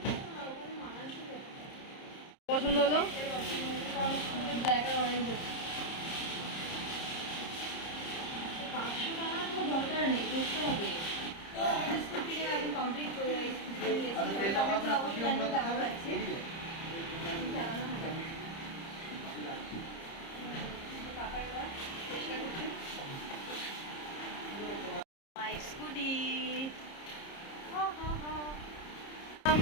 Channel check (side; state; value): right; late; 30 ms